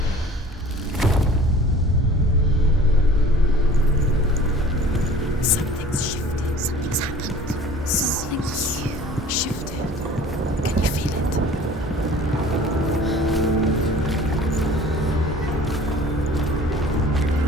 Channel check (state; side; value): normal; both; correlation 0.46